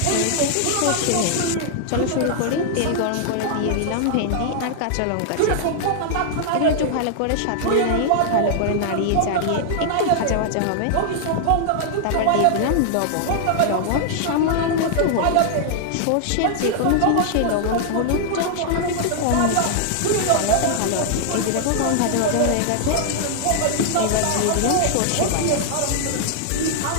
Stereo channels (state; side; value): different; both; correlation -0.01